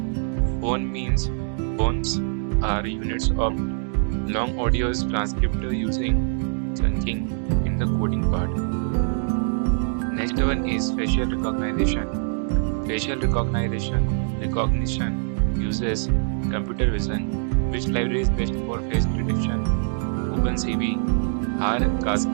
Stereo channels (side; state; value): left; silent; digital silence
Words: Phones are units of long audios transcript using chunking in the coding part. Next one is facial recognition. Facial recognition uses computer vision. Which library is best for face detection? OpenCV. R